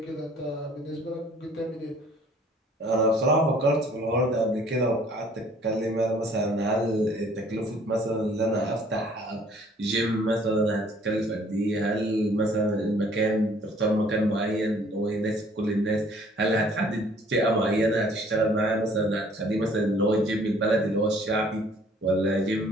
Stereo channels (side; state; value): both; normal; correlation 0.57